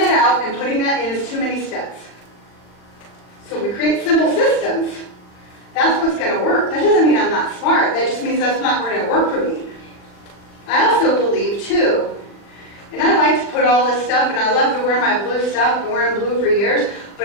out and putting that in is too many steps. So we create simple systems. That's what's going to work. That doesn't mean I'm not smart. That just means that's not going to work for me. I also believe, too, and I like to put all this stuff, and I love to wear my blue stuff. I've been wearing blue for years.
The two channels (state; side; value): late; right; 39 ms